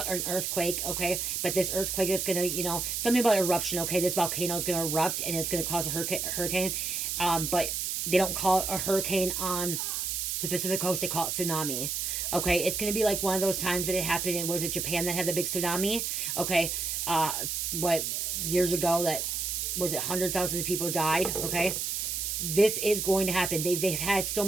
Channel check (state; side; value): noise; right; hiss, 1 dB below the sound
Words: an earthquake, okay? But this earthquake that's gonna, something about eruption, okay? This volcano is gonna erupt and it's gonna cause a hurricane. But they don't call it a hurricane on the Pacific coast, they call it tsunami. Okay, it's gonna be like one of those times that it happened in, was it Japan that had the big tsunami? Okay, what, years ago, that was it, hundreds of thousands of people died, okay? This is going to happen. They've had so